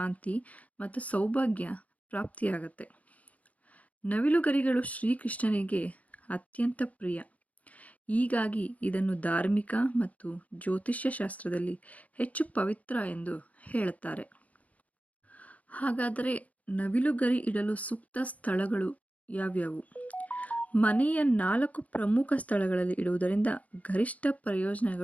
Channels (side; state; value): right; late; 0.070 ms